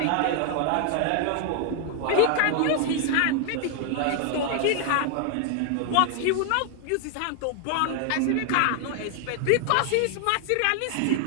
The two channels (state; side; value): different; both; correlation 0.00